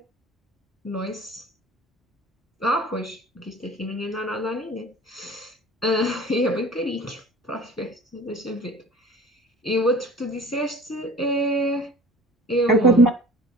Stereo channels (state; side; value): normal; both; correlation 0.44